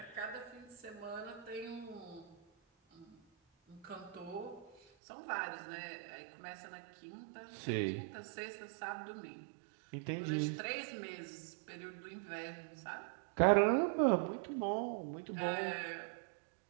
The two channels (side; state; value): left; drops out; at 4.8 s